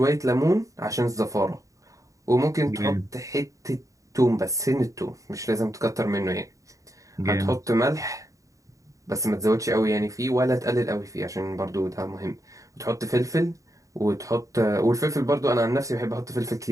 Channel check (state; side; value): late; left; 0.16 ms